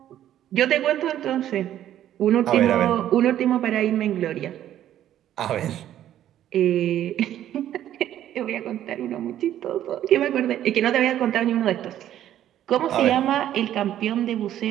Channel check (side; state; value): left; quieter; 11.7 dB